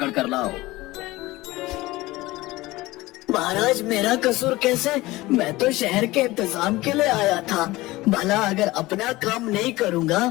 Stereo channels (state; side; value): quieter; right; 19.4 dB